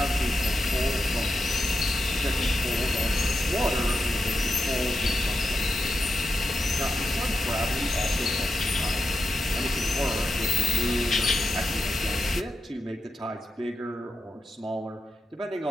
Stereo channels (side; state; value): both; normal; correlation 0.88